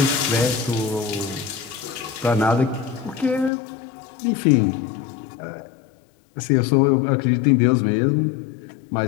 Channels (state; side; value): drops out; right; at 3.5 s